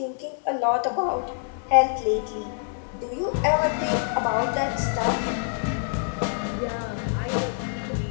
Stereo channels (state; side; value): silent; right; digital silence